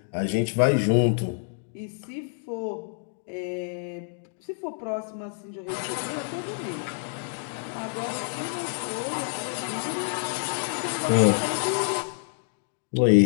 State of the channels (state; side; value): silent; right; digital silence